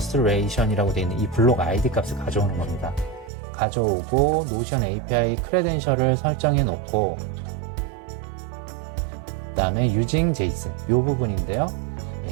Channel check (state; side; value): drops out; left; at 3.3 s